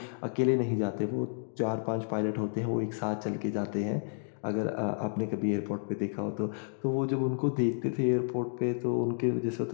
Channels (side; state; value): right; silent; digital silence